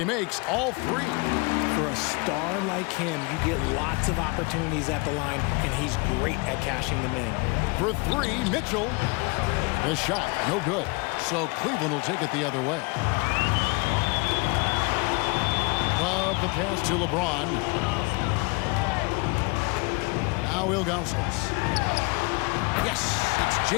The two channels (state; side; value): quieter; right; 28.0 dB